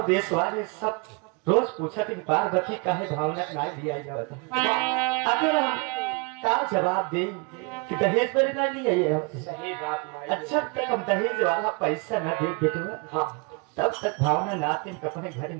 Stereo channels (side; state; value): left; quieter; 31.6 dB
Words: देश वाले सब रोज पूछा कि पार्वती काहे भावना ना दिया जाता अगर हम का जवाब दे कि दहेज पर ना लिया ये सही बात माई। अच्छा तक हम दहेज वाला पैसा न दे बेटवा हां तब तक भावना नाते अपने घर